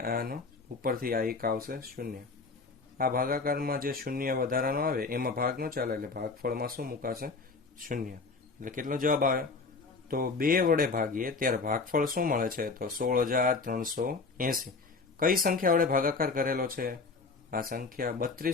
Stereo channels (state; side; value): quieter; right; 4.2 dB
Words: આનો ઉપરથી આ 1 આવશે 0. આ ભાગાકારમાં જે 0 વધારાનો આવે એમાં ભાગ ન ચાલે એટલે ભાગફળમાં શું મુકાશે? 0. એટલે કેટલો જવાબ આવે? તો 2 વડે ભાગીએ ત્યારે ભાગફળ શું મળે છે? તો 16,380. કઈ સંખ્યા વડે ભાગાકાર કરેલો છે? આ સંખ્યા